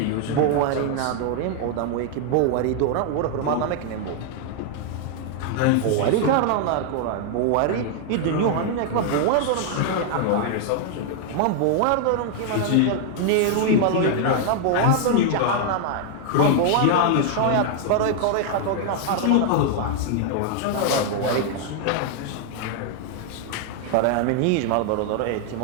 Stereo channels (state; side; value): different; both; correlation 0.00